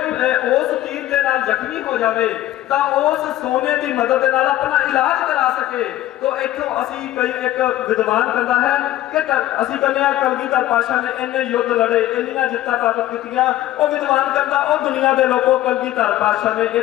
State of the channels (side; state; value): right; quieter; 14.4 dB